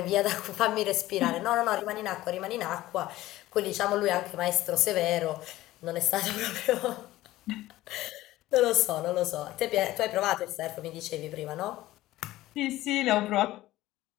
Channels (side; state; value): right; quieter; 16.3 dB